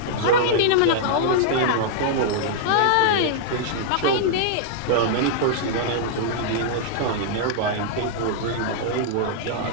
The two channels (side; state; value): both; different; correlation -0.01